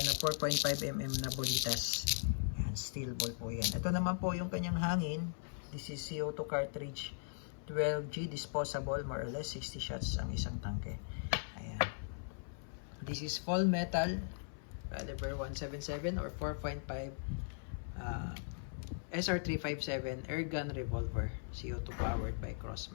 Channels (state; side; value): silent; right; 52 dB below the other